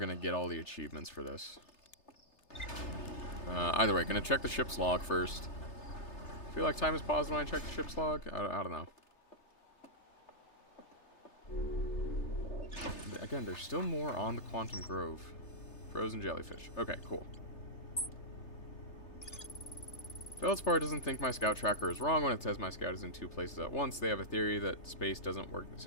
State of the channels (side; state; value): right; late; 3.3 ms